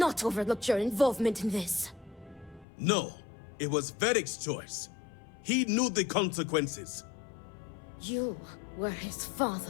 overlooked your involvement in this. No, it was Vaeric's choice. He knew the consequences. You were his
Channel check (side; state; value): right; drops out; at 2.7 s